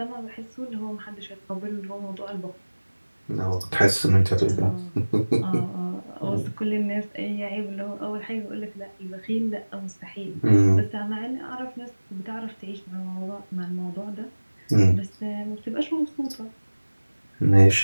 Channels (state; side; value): inverted; both; correlation -1.00